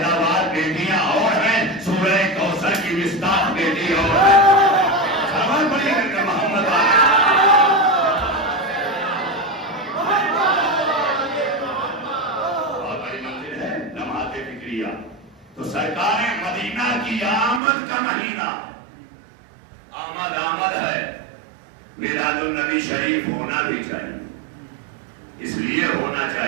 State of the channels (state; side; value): drops out; left; at 17.6 s